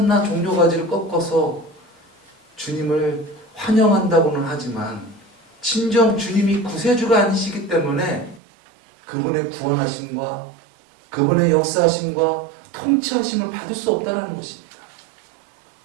종려가지를 꺾어서 주님을 환영한다고는 하지만 진정 주님이 구세주가 아니시기 때문에 그분의 구원하심과 그분의 역사하심과 통치하심을 받을 수 없다는 것입니다.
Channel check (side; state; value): left; drops out; at 8.4 s